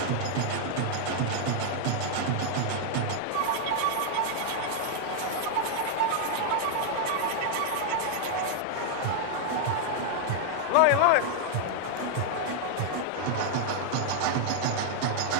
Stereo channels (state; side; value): different; both; correlation 0.00